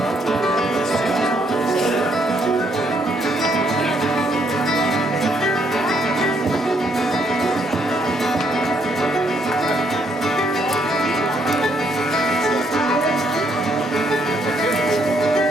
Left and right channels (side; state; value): both; normal; correlation 0.71